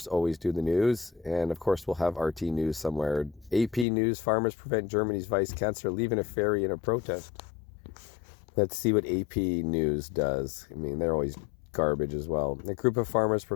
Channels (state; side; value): drops out; right; at 3.9 s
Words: always do the news, and of course we'll have RT News somewhere. AP News: farmers prevent Germany's vice chancellor leaving a ferry in a protest. Let's see what AP News does. I mean, they're always garbage as well. A group of farmers